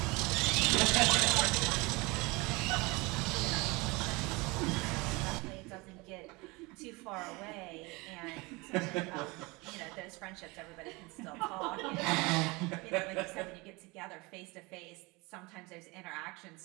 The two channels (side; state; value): left; quieter; 25.1 dB